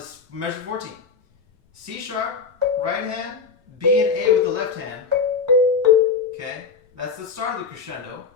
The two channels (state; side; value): quieter; right; 5.2 dB